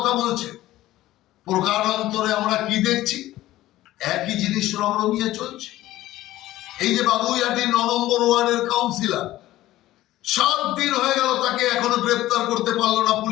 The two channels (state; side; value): quieter; right; 15.6 dB